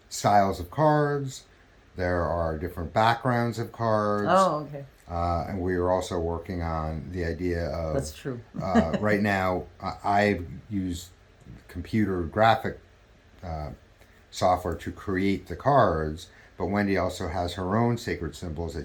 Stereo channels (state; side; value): identical; both; correlation 1.00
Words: styles of cards. There are different backgrounds of cards. Oh, okay. And we are also working on the idea of. That's true. Right now, I use computer graphic software to create the cards, but Wendy also has her own sacred symbols